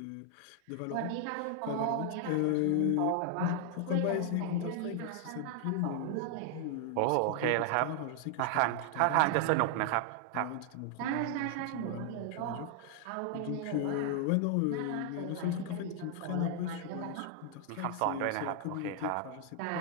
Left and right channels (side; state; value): both; different; correlation 0.00